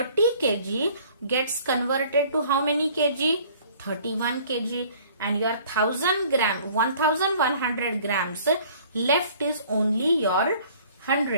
kg gets converted to how many kg? 31 kg. And your 1100 grams left is only your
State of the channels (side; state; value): both; inverted; correlation -0.54